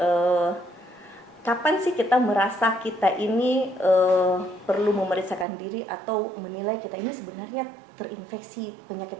kapan sih kita merasa kita ini perlu memeriksakan diri atau menilai kita ini sebenarnya terinfeksi penyakit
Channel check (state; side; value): drops out; left; at 5.5 s